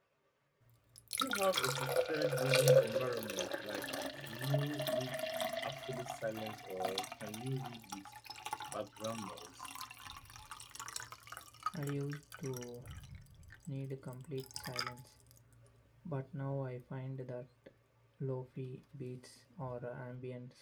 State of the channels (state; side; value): identical; both; correlation 1.00